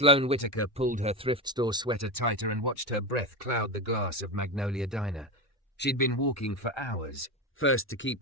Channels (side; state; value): both; normal; correlation 0.17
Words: Whitaker pulled her thrift store sweater tighter and watched her breath cloud the glass of Magnolia Diner. She'd been walking for hours, first to